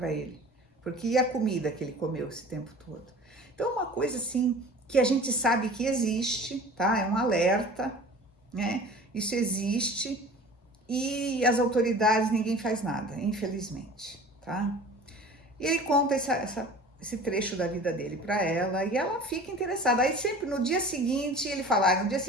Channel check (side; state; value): both; normal; correlation 0.42